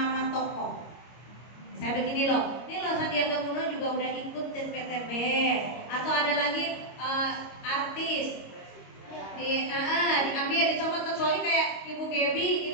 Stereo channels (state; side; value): late; right; 25 ms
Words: tokoh. Saya begini loh, ini loh Sandiaga Uno juga udah ikut PTB, atau ada lagi artis diambil dicomot, kecuali kayak Ibu Gebi